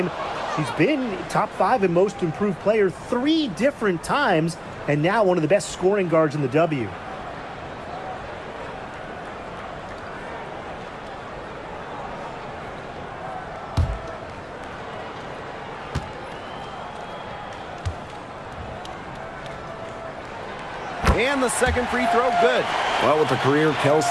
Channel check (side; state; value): both; identical; correlation 1.00